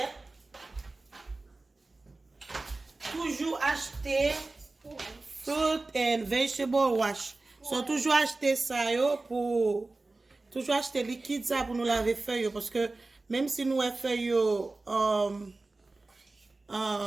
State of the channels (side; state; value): left; quieter; 3.3 dB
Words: toujours acheter fruit and vegetable wash so toujours acheter ça yo pour toujours acheter liquide ça pour nous laver feuille parce que même si nous feuille